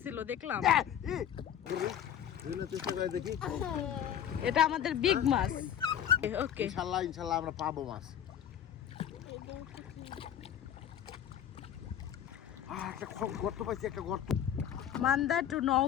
দেখলাম। দেখি, এটা আমাদের বিগ মাছ। ওকে, ইনশাল্লাহ আমরা পাবো মাছ। একটা গর্ত পাইছি, একটা গর্ত। Manda to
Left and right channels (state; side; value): quieter; right; 9.8 dB